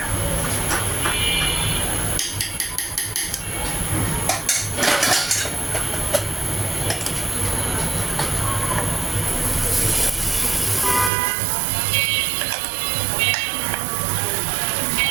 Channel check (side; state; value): left; drops out; at 11.1 s